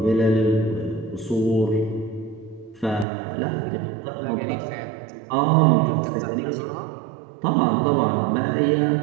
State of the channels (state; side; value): drops out; left; at 3.1 s